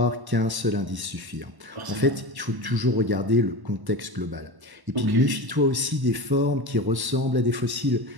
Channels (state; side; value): late; left; 1.1 ms